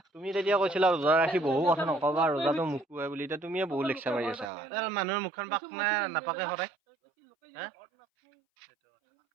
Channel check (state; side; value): drops out; left; at 4.5 s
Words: তুমি তেতিয়া কৈছিলা रोजा ৰাখি বহু কথা নকবা रोजाটো মুকুৱাই বুলি এটা তুমিয়ে বহু লেকচাৰ মাৰি আছা মানুহৰ মুখখন পাক নাপাকে হৰাই হা